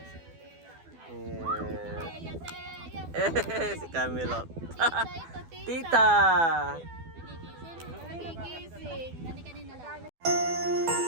Si Camilo. Tita!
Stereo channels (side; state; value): left; late; 12 ms